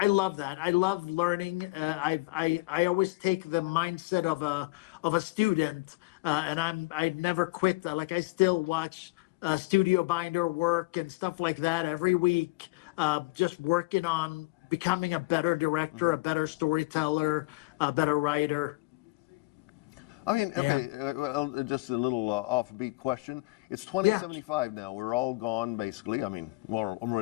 love that. I love learning. I always take the mindset of a student, and I never quit. Like, I still watch studio binder work and stuff like that every week, just working on becoming a better director, a better storyteller, a better writer. I mean, okay, well, just a little offbeat question. It's 2075 now. We're all gone, basically. I mean,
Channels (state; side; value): quieter; right; 24.2 dB